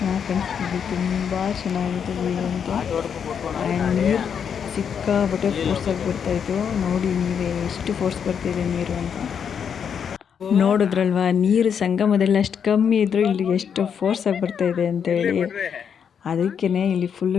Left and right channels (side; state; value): right; quieter; 7.5 dB